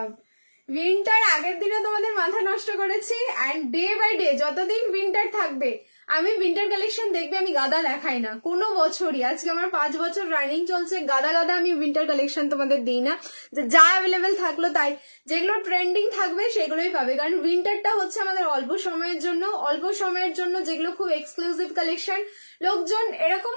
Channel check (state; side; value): inverted; both; correlation -1.00